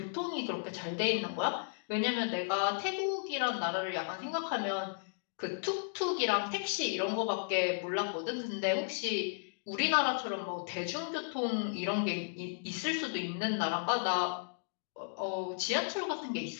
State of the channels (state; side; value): silent; right; digital silence